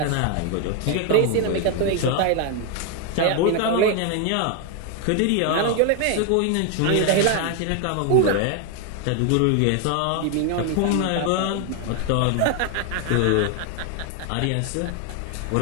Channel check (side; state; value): both; different; correlation 0.01